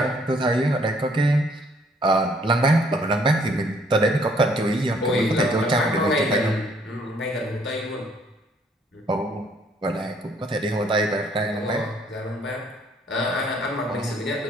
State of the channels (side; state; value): both; normal; correlation 0.64